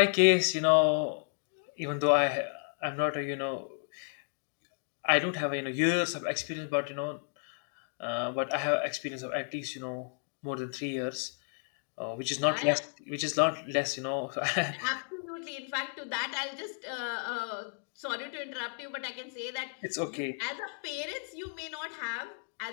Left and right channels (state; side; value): silent; right; 56 dB below the other